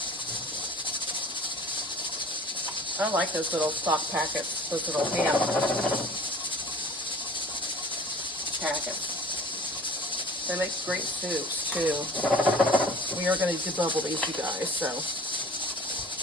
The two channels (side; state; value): both; normal; correlation 0.45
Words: I like those little stock packets, those little ham packets. They make great soups too. We are going to debubble these, you guys, so